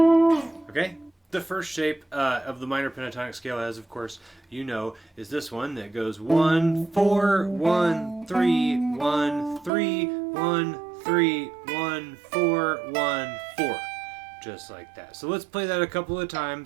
Okay? The first shape of the minor pentatonic scale, as of course you know, is this one that goes 1 4 1 3 1 3 1 3 1 4 1 4. Just like that. So let's play that a couple of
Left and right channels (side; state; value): left; drops out; at 9.7 s